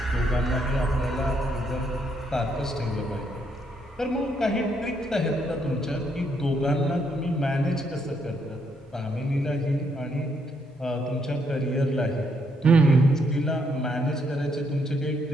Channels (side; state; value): both; normal; correlation 0.74